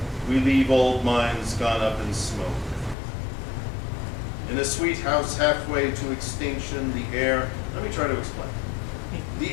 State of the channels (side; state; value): right; drops out; at 3.0 s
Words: we leave old minds gone up in smoke. In a sweet house halfway to extinction, the air, let me try to explain.